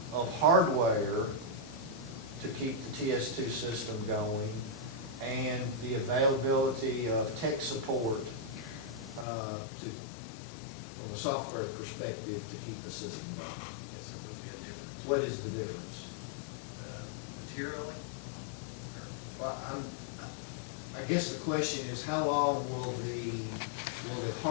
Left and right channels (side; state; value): right; drops out; at 9.2 s